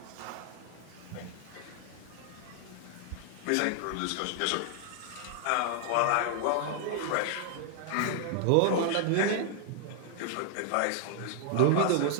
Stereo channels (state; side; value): different; both; correlation 0.00